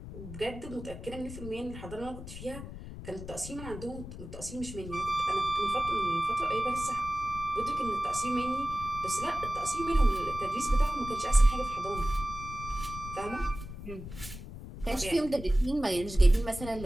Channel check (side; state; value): left; noise; rumble, 11 dB below the sound